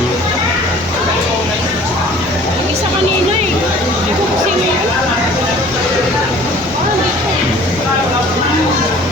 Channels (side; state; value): both; normal; correlation 0.50